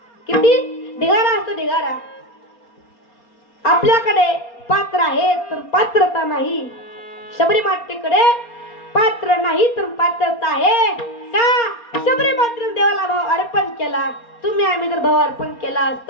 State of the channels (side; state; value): right; late; 4.3 ms